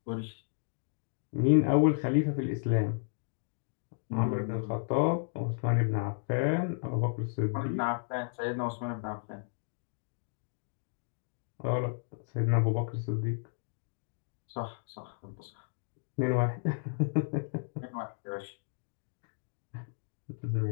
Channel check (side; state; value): right; silent; digital silence